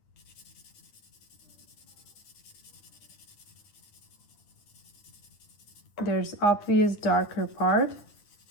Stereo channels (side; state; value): right; late; 9.8 ms